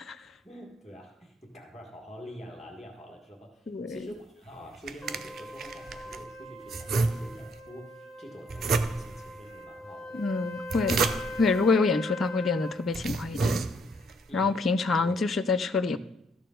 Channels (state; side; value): normal; both; correlation 0.69